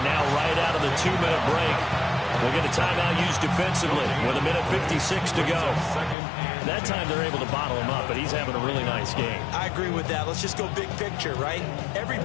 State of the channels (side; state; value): right; drops out; at 6.2 s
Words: now right out of the 2-minute break, we'll get a timeout used defensively with 1:56 to go. That time they're able to bottle him up, but he's having a really nice game. I agree with that. Let's just go big picture, right? Every